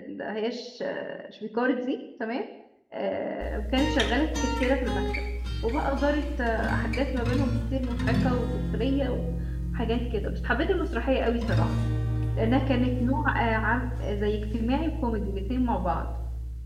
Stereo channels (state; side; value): identical; both; correlation 1.00